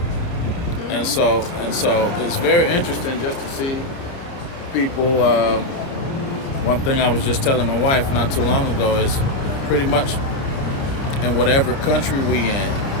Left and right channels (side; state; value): right; late; 29 ms